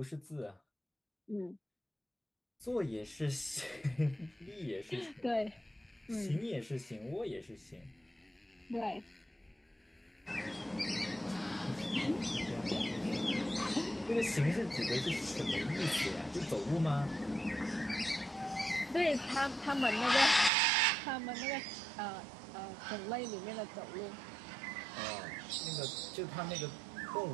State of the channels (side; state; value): left; drops out; at 20.5 s